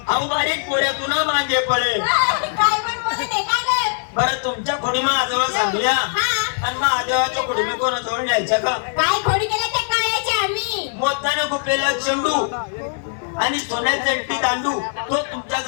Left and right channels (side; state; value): right; silent; digital silence